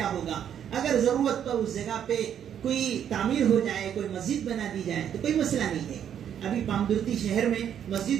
ہوگا، اگر ضرورت پر اس جگہ پہ کوئی تعمیر ہو جائے، کوئی مسجد بنا دی جائے تو کوئی مسئلہ نہیں ہے۔ ابھی پامدرتی شہر میں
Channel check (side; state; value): left; quieter; 9.3 dB